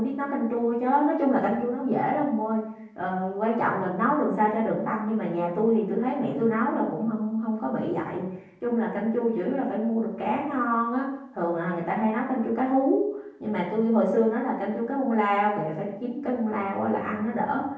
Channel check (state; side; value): identical; both; correlation 1.00